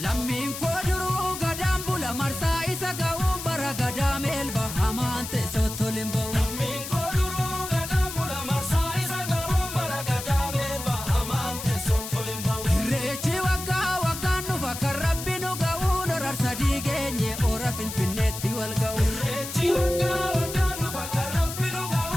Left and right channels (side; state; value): left; noise; hiss, 8 dB below the sound